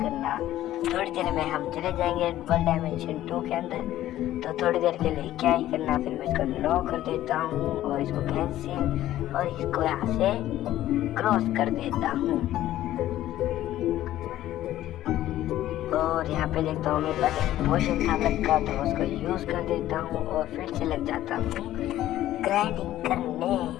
थोड़ी देर में हम चले जाएंगे वर्ल्ड डायमेंशन 2 के अंदर, तो थोड़ी देर के लिए क्या ही करना। फिर मैं इसको नो कर देता हूँ और इसको कैंसिल और इसको यहाँ से क्रॉस कर देता हूँ। और यहाँ पे देखता हूँ मेरे पास एक पोशन था का, तो उसको यूज कर देता हूँ और फिर से लग जाता हूँ ग्राइंडिंग करने।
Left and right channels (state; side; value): quieter; right; 13.7 dB